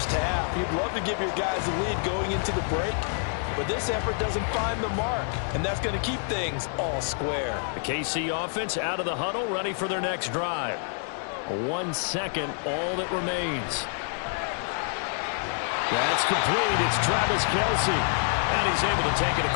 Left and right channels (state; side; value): silent; right; 57 dB below the other